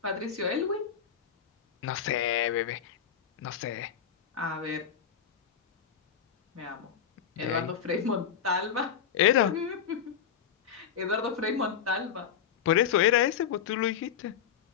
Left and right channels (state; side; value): quieter; right; 8.1 dB